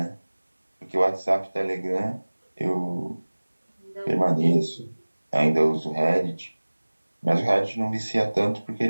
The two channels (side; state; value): both; inverted; correlation -1.00